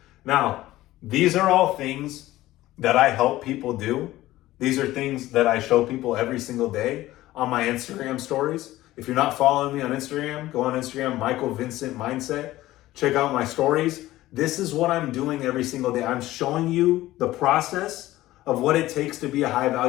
Now, these are all things that I help people do. These are things that I show people every single day on my Instagram stories. If you're not following me on Instagram, go on Instagram, MichaelVincentMindset. Check out my stories. This is what I'm doing every single day. I'm showing you the process of what it takes to be a high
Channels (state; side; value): quieter; right; 16.2 dB